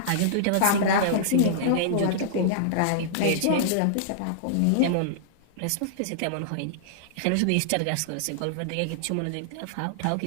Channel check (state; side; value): different; both; correlation -0.01